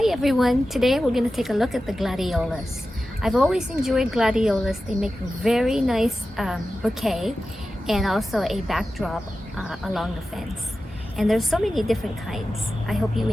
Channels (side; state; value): both; normal; correlation 0.93